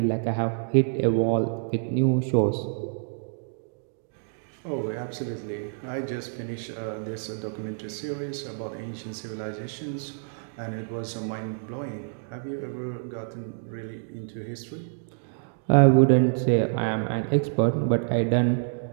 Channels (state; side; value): silent; left; digital silence